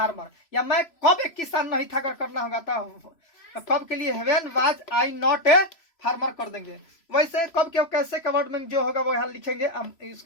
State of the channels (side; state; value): right; late; 3.0 ms